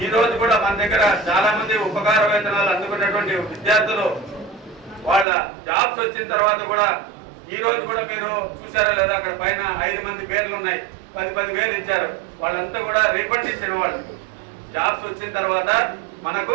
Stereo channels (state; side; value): drops out; left; at 5.2 s